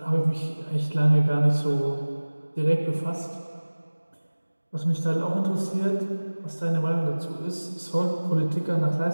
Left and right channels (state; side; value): inverted; both; correlation -1.00